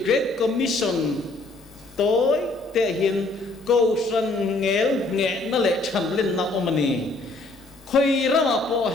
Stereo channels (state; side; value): quieter; right; 3.1 dB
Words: Great Commission tối thể hiện cầu sản nghe nó lại chăm lên nào ông này khơi ra mà bỏ